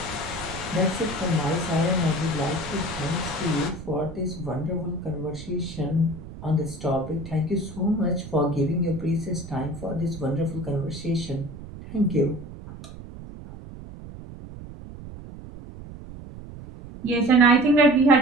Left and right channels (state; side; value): noise; right; rumble, 13 dB below the sound